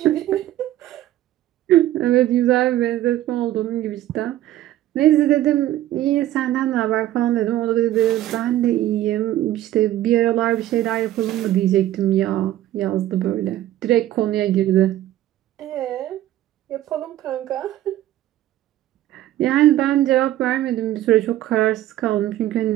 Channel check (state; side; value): quieter; left; 13.8 dB